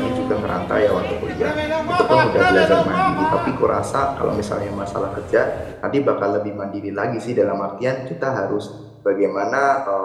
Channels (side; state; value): both; identical; correlation 1.00